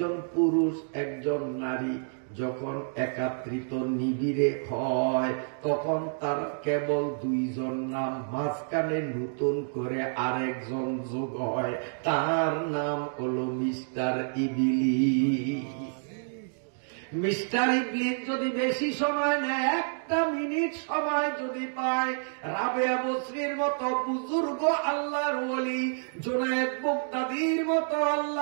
পুরুষ একজন নারী যখন একাত্রিত নিবিড়ে হয় তখন তার কেবল 2 জন নাম, মাঝখানে নতুন করে আরেকজন যোগ হয়, তার নাম হলো মিস্টার ইবলিস। মিস্টার ইবলিস যদি বেশি সময় নেয়, 1 মিনিট সময় যদি পায়, রাবেয়া বসরির মতো বুজুর্গ আল্লাহর ওলি, জুনায়েদ বাগদাদীর মতো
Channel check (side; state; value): left; silent; digital silence